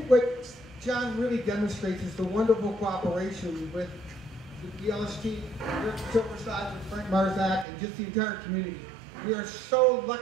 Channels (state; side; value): drops out; left; at 7.7 s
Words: what John really demonstrates is the wonderful cooperation with the LST, Silversides, and Frank Marzak, and just the entire community. We are so